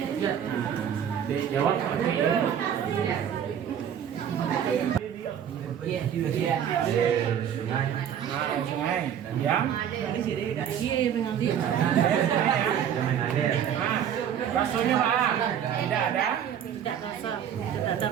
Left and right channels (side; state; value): left; quieter; 9.0 dB